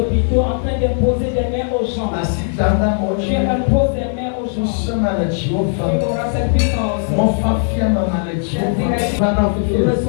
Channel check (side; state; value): right; silent; digital silence